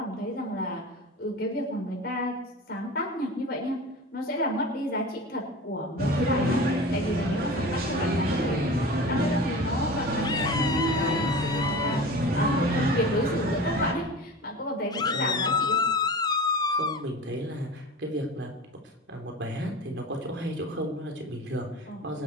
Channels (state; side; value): normal; both; correlation 0.34